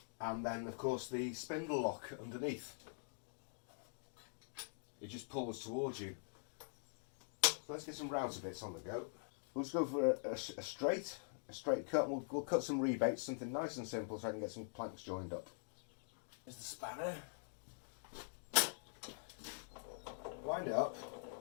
And then, of course, the spindle lock underneath. It just pulls towards you. So let's get some router bits on the go. We'll just go for a straight cut. We'll cut some rebates, something nice and simple, so I can get some planks joined up. Here's the spanner. Wind it up.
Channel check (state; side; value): silent; right; digital silence